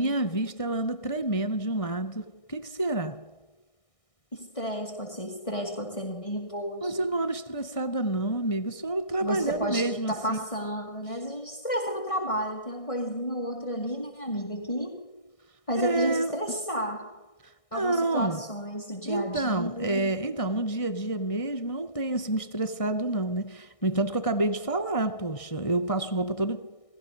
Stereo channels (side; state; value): right; late; 1.6 ms